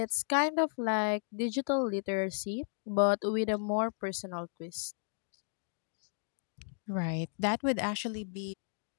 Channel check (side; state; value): right; silent; digital silence